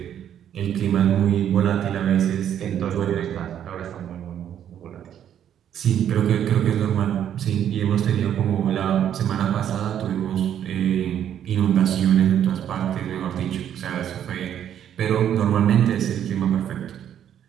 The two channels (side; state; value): left; quieter; 9.9 dB